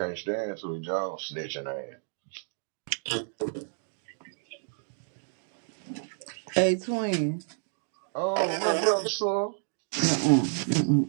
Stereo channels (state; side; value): silent; left; 57 dB below the other